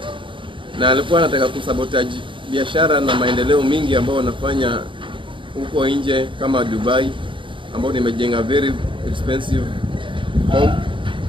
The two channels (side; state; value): left; late; 0.24 ms